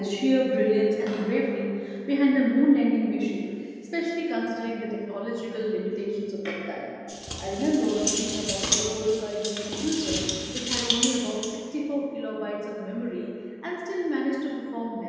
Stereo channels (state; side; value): identical; both; correlation 1.00